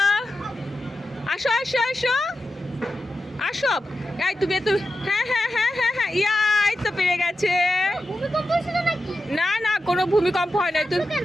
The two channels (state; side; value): normal; both; correlation 0.90